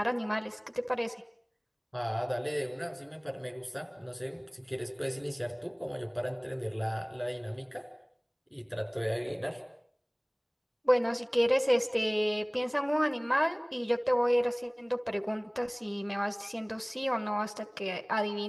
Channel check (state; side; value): identical; both; correlation 1.00